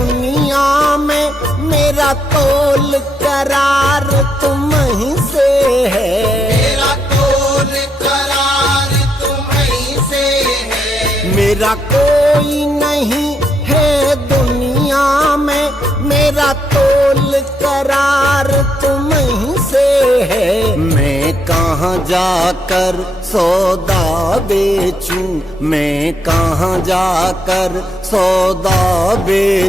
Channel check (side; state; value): both; normal; correlation 0.77